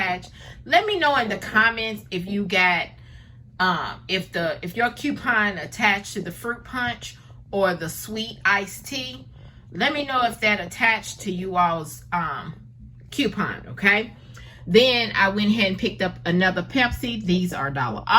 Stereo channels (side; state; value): both; identical; correlation 1.00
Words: Let me know in the comments if you got, if your coupon attached to the fruit punch or the sweet iced tea. Let me know if that attached to you all's coupon, okay? Then I went ahead and picked up another Pepsi. These are $1.